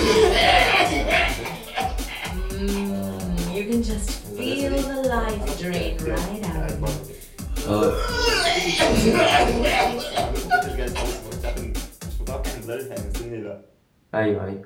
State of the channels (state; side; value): identical; both; correlation 1.00